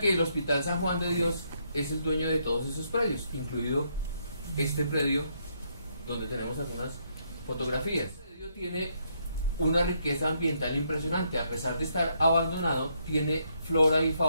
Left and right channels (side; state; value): both; inverted; correlation -0.74